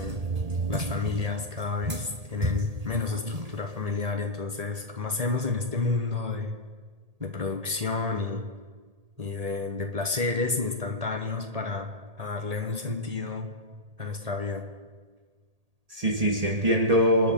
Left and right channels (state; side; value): late; left; 1.8 ms